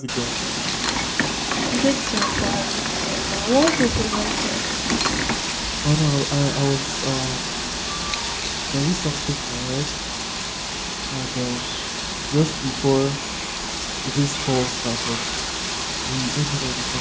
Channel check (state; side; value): identical; both; correlation 1.00